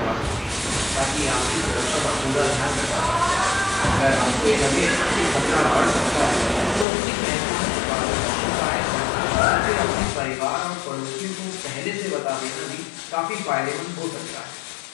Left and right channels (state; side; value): drops out; right; at 6.9 s